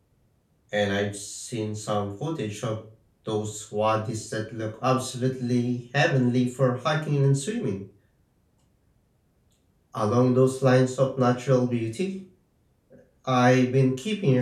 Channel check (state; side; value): identical; both; correlation 1.00